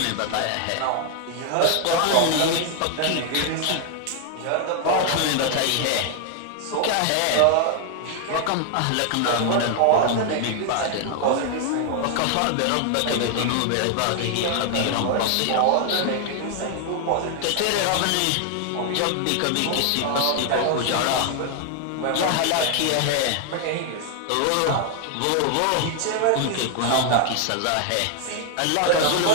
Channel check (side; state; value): both; different; correlation 0.00